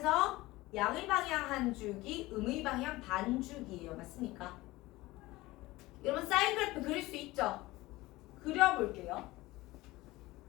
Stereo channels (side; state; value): right; quieter; 19.3 dB